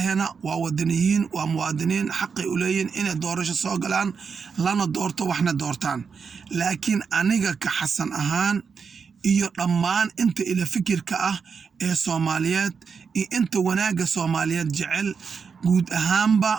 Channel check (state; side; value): quieter; left; 5.8 dB